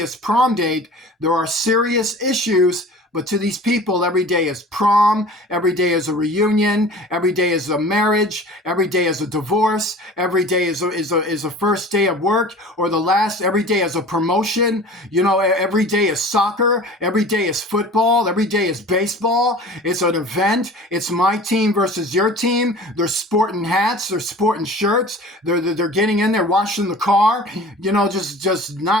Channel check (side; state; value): both; normal; correlation 0.41